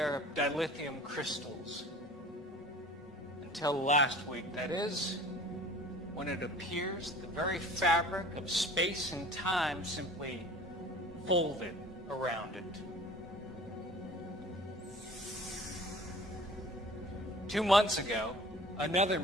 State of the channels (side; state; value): both; normal; correlation 0.45